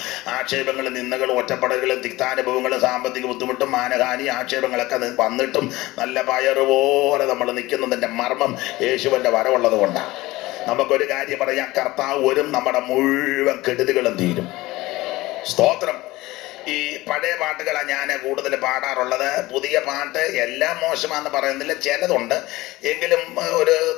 ആക്ഷേപങ്ങളും നിന്ദകളും ഒറ്റപ്പെടലുകളും തിക്താനുഭവങ്ങളും സാമ്പത്തിക ബുദ്ധിമുട്ടും മാനഹാനി ആക്ഷേപങ്ങളൊക്കെ വന്നിട്ടും നല്ല പയറുപോലെ നമ്മൾ നിൽക്കുന്നതിൻ്റെ മർമ്മം യേശുവിൻ്റെ വരവുള്ളത് കൊണ്ടാണ്. നമുക്കൊരു കാര്യം പറയാം, കർത്താവ് വരും, നമ്മുടെ മുഴുവൻ കെടുതികളും തീരും. സ്തോത്രം. ഈ പഴയ പാട്ടുകളാണ് ഞാൻ കൂടുതൽ പാടാറുള്ളത്. പുതിയ പാട്ട് എല്ലാം മോശമാണെന്ന് പറയുന്നില്ല, ചിലതുണ്ട്, എങ്കിലും ഒരു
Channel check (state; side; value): quieter; right; 19.2 dB